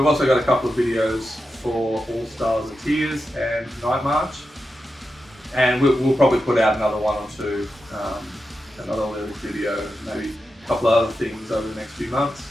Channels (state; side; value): normal; both; correlation 0.89